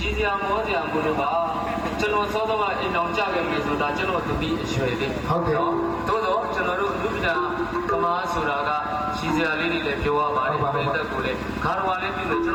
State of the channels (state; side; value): identical; both; correlation 1.00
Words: ည်စရာမောစရာဘလို့ပါကျွန်တော်စောစောကအိမ်အောင်ကြခဲ့မယ်ဆိုတာကျွန်တော်သမီးအရွယ်လေးဟုတ်ကဲ့နော်သို့တော့ကျွန်တော်တို့လူပညာကမားဆိုတာကရည်စရာလေးတွေလည်းပြောရပါတယ်ပြိတ္တကိုလည်းဂါရဝါလေးပြုလို့ကျွန်